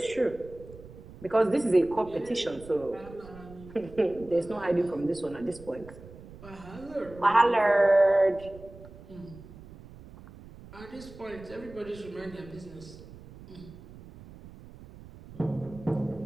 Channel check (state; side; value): noise; right; rumble, 18 dB below the sound